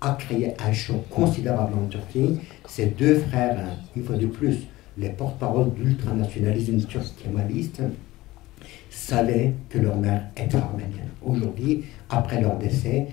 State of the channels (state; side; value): quieter; right; 18.2 dB